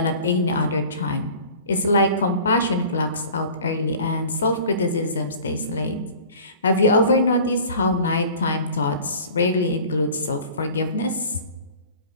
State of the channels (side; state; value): both; inverted; correlation -0.44